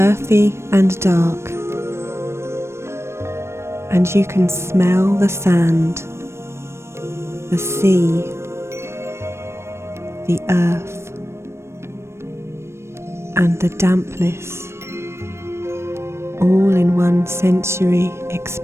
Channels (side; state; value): left; late; 0.13 ms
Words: and dark, and you can smell the sand, the sea, the earth, and the dampness, all in one sensory